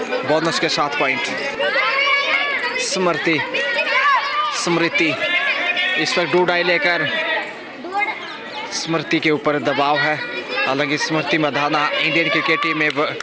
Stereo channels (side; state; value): both; identical; correlation 1.00